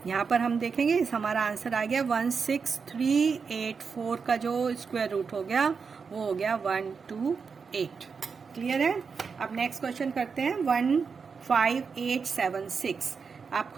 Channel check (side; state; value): left; quieter; 5.5 dB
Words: यहाँ पर हम देखेंगे, इस हमारा आंसर आ गया 16384 का जो स्क्वायर रूट हो गया वो हो गया 128। क्लियर है? अब नेक्स्ट क्वेश्चन करते हैं 15876। आप